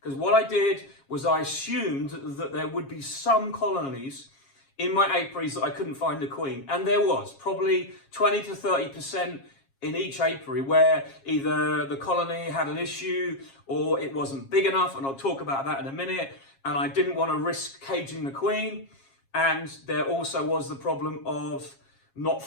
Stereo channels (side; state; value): right; late; 7.4 ms